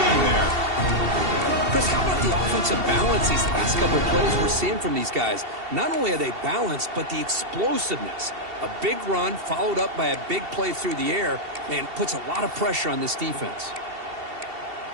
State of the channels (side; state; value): left; late; 2.7 ms